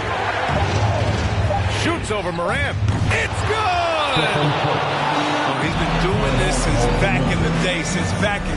Shoots over Morant. It's good! Oh, he's been doing this since back in the day, since back in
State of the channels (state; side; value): identical; both; correlation 1.00